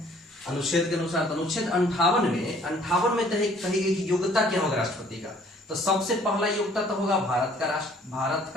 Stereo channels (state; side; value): normal; both; correlation 0.57